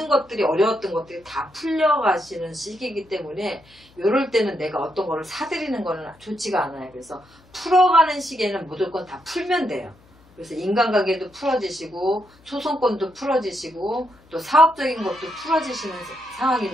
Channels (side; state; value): left; noise; hum, 28 dB below the sound